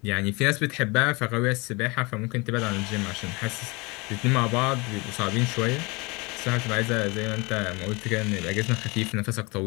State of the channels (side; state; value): right; quieter; 26.5 dB